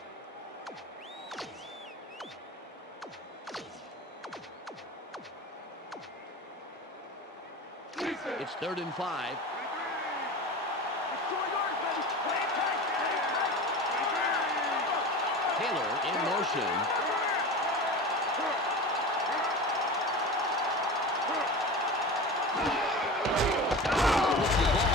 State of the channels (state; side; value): normal; both; correlation 0.31